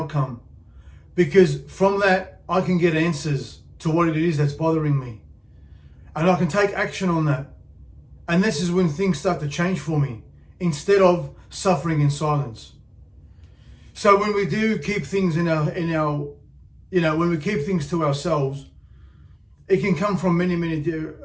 Because from that, I can get answers to what it is that's bothering me. And I can take action on that. And this is when things start to change for me, instead of suffering in silence. So when we do keep things when we keep things to ourselves, it can come from many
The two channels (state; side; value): identical; both; correlation 1.00